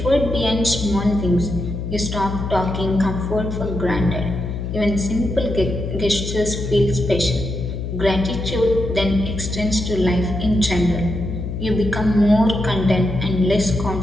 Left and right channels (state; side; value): noise; left; hum, 5 dB below the sound